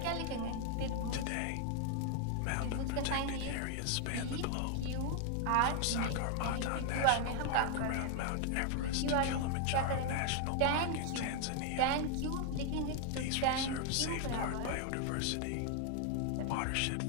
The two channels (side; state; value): both; different; correlation 0.00